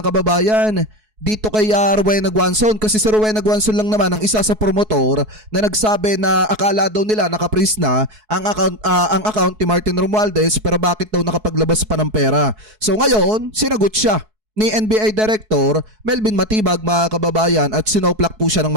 kababayan, dito kay Rowena Guanzon, kasi si Rowena Guanzon lang naman ang isa sa promotor na nagsabi na akala daw nila nakapris na ang account ni Martin Romualdez pero bakit daw nakapaglabas pa ng pera. So ngayon, sinagot siya ni NBI Director Melvin Matibag mga kababayan at sinoplak po siya ng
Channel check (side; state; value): left; late; 4.7 ms